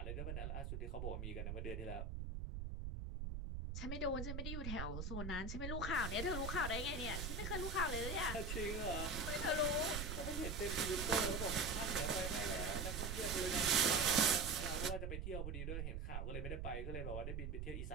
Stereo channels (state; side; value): noise; right; rumble, 3 dB below the sound